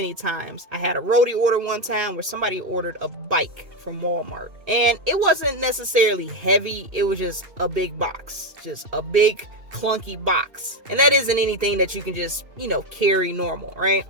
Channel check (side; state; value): left; late; 2.6 ms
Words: times. I had a roadie order one time where somebody ordered a bike from Walmart, and it wasn't necessarily heavy. It was just a big box, just a big clunky box, and that isn't anything that you can just carry normal, right?